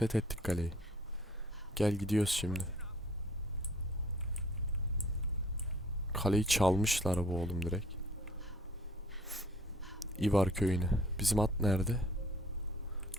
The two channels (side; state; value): both; normal; correlation 0.56